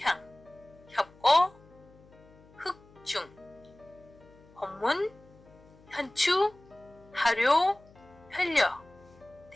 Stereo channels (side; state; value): left; noise; hum, 25 dB below the sound